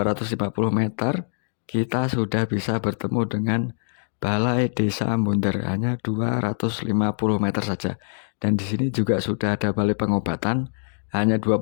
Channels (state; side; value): silent; right; digital silence